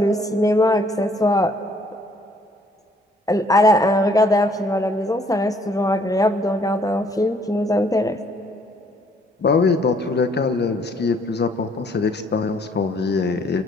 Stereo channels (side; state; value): both; normal; correlation 0.64